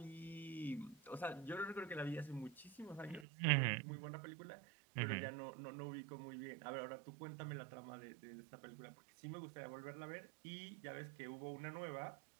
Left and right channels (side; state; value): left; drops out; at 3.2 s